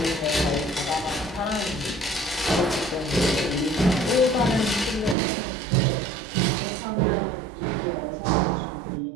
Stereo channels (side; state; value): left; drops out; at 5.2 s